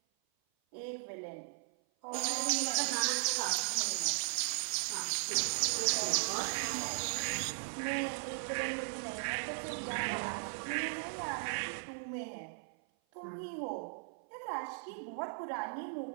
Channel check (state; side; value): silent; left; 53 dB below the other